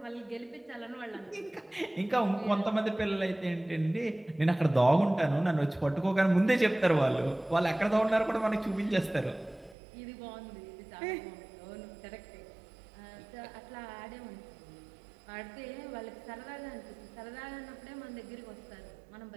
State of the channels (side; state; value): left; drops out; at 9.8 s